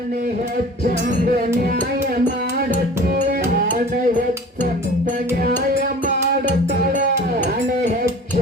ಹೆಚ್ಚಂದ ನ್ಯಾಯ ಮಾಡತ್ತೆ, ನಾನೇ ಹೆಚ್ಚಂದ ನ್ಯಾಯ ಮಾಡತಾಳ, ನಾನೇ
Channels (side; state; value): both; normal; correlation 0.42